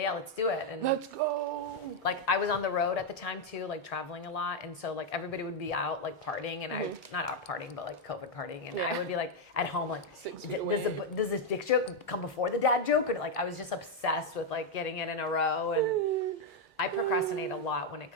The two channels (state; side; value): normal; both; correlation 0.01